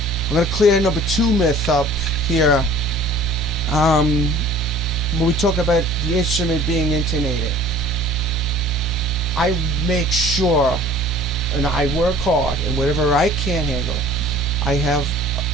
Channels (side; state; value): both; normal; correlation 0.48